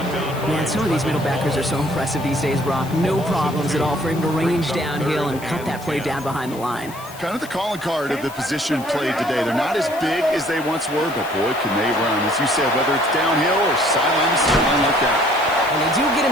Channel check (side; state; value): left; noise; hiss, 18 dB below the sound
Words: Man, some of these middle backers are so impressive these days, Brock. No problems at all for him to range downhill and cut that play down behind the line. Kind of the calling card of the position played today. They're not as big as they once were, but boy, can they run. As you said, whether it's downhill or sideline to sideline like that. And they do get